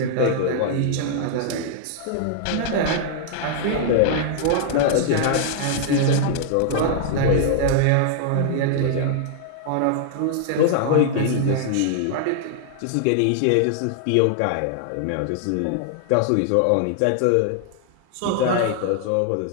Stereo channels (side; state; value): both; different; correlation -0.01